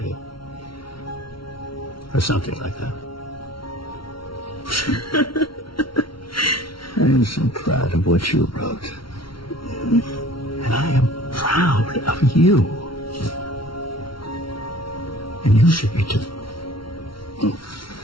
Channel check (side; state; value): right; late; 0.74 ms